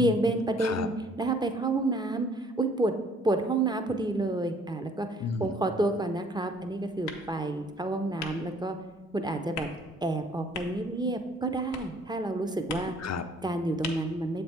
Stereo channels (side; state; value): both; normal; correlation 0.59